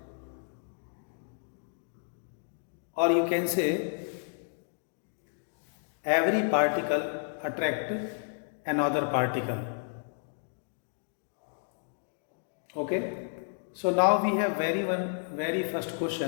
or you can say every particle attracts another particle. Okay, so now we have very first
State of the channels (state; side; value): silent; right; digital silence